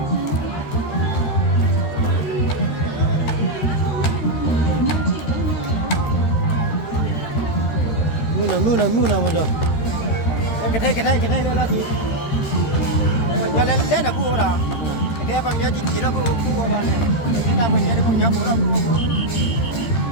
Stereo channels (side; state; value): right; late; 13 ms